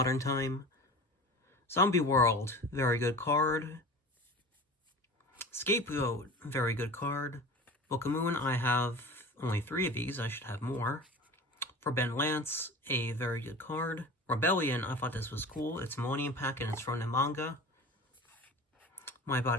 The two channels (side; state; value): both; normal; correlation 0.36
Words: time. Zombie World, very good card. Scapegoat, very good card. Book of Moon, I have only 3 of these. I should have more. Forbidden Lance, a very good card. Rebellion, I thought this was cool. It's Millennium Pack and it's from the manga. My